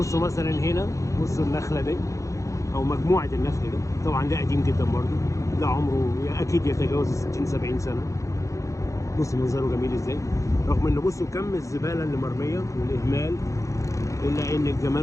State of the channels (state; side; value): late; right; 0.15 ms